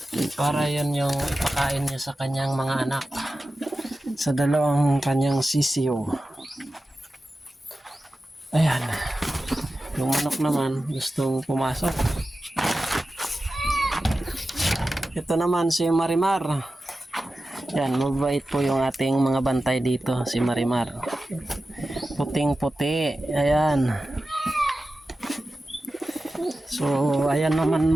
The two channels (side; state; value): both; normal; correlation 0.94